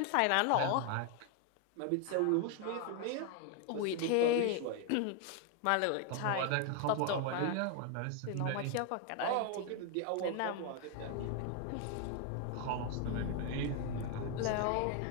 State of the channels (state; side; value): different; both; correlation 0.00